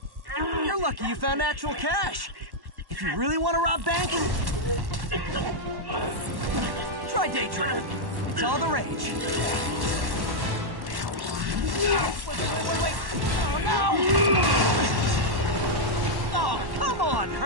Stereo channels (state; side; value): late; left; 1.1 ms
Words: You're lucky you found actual cash. If you really want to rob banks, try day trading. It's all the rage. Wait. Oh, no! Oh, come on,